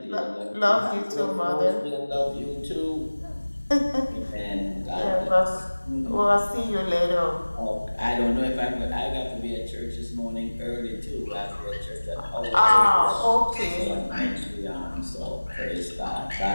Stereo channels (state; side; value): inverted; both; correlation -1.00